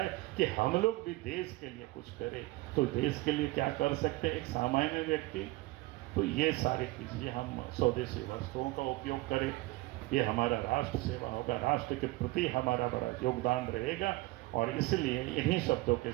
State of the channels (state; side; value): quieter; left; 20.5 dB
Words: कि हम लोग भी देश के लिए कुछ करें। तो देश के लिए क्या कर सकते हैं एक सामान्य व्यक्ति? तो ये सारी चीज़ें हम स्वदेशी वस्तुओं का उपयोग करें, ये हमारा राष्ट्र सेवा होगा, राष्ट्र के प्रति हमारा बड़ा योगदान रहेगा। और इसलिए इन्हीं शब्दों के